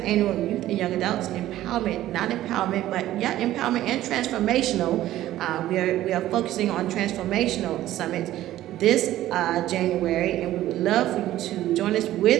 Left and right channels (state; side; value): quieter; left; 14.1 dB